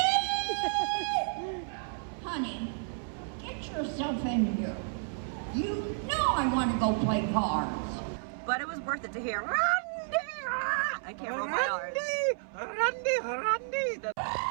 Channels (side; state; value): left; silent; 57 dB below the other